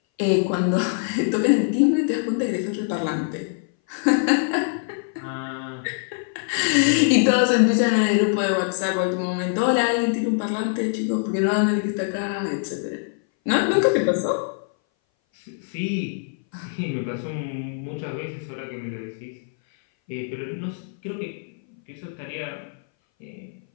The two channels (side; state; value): right; silent; 59 dB below the other